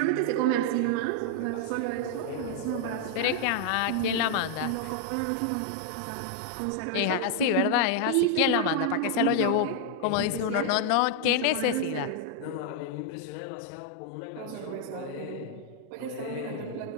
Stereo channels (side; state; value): both; different; correlation 0.00